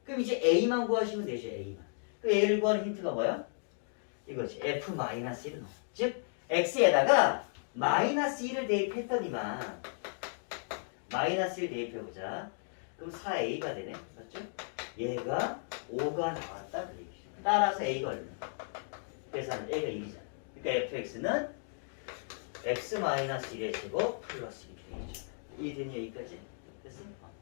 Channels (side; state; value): right; silent; digital silence